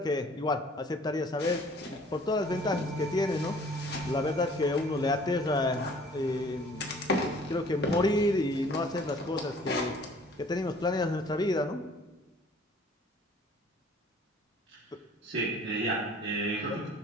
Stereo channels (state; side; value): normal; both; correlation 0.53